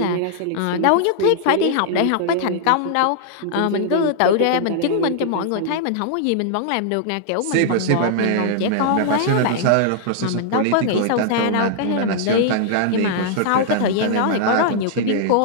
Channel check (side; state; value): both; different; correlation -0.01